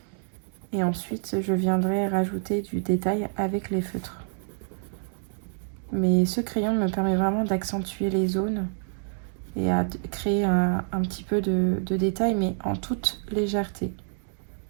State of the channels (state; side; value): silent; left; digital silence